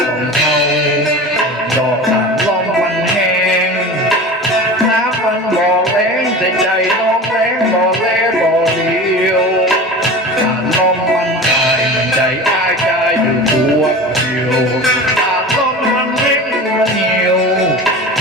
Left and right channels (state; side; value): normal; both; correlation 0.33